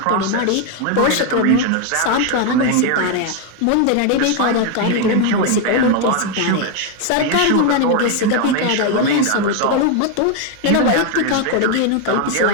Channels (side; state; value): both; different; correlation 0.01